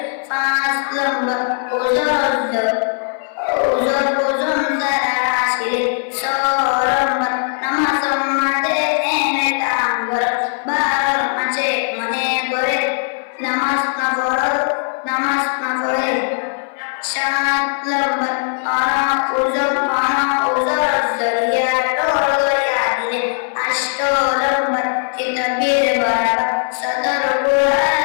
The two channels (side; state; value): right; silent; 61 dB below the other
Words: পাঁচ নম্বর ওজন তারা আসিলে, ছয় নম্বর নামাজ সম্মাদে এনে কাম কর, 12 মাঝে মনে করে নামাজ না পড়ে, 7 নম্বর ওজর জরিয়া টোল করিয়া দিলে, 8 নম্বর কিতাবের বরাবর সদর কুরআন,